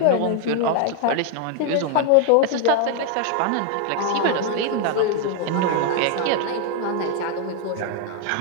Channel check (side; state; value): both; different; correlation 0.00